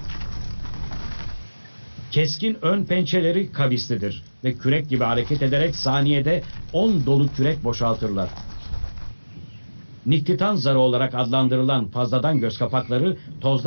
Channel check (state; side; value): inverted; both; correlation -1.00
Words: Keskin ön pençeleri kavislidir ve kürek gibi hareket ederek saniyede 10 dolu kürek boşaltırlar. Niktitan zarı olarak adlandırılan fazladan göz kapakları